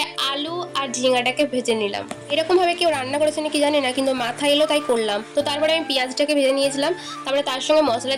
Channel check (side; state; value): both; identical; correlation 1.00